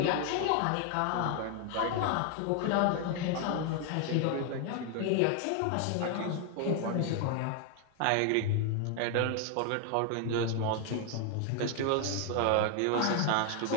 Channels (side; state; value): both; different; correlation 0.00